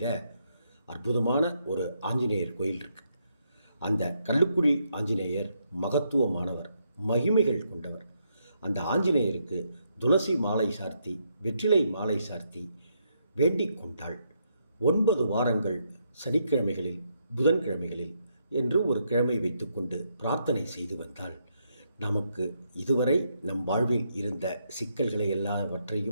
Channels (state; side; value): inverted; both; correlation -0.77